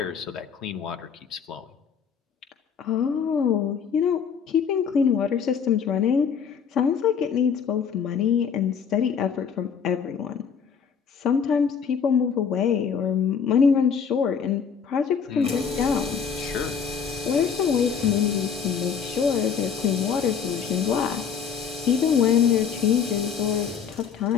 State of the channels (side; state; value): right; quieter; 6.8 dB